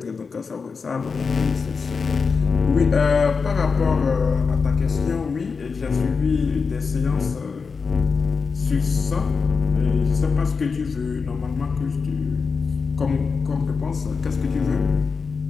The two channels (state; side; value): quieter; right; 5.1 dB